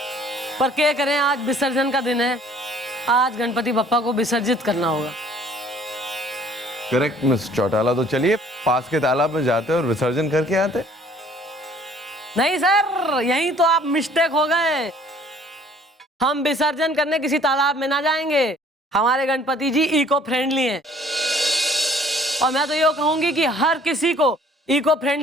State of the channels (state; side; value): normal; both; correlation 0.56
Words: पर क्या करें, आज विसर्जन का दिन है। आज गणपति बप्पा को विसर्जित करना होगा। करेक्ट मिस चौटाला, तो चलिए पास के तालाब में जाते और विसर्जन करके आते। नहीं सर, यही तो आप मिस्टेक हो गए। हम विसर्जन करने किसी तालाब में ना जाएंगे। हमारे गणपति जी इको फ्रेंडली हैं, और मैं तो ये कहूंगी कि हर किसी को इको